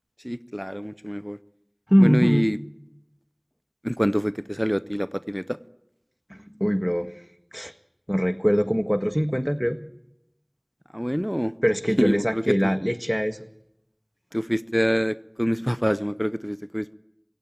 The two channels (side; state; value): both; identical; correlation 1.00